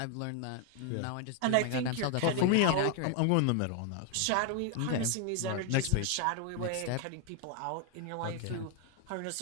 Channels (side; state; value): both; different; correlation 0.01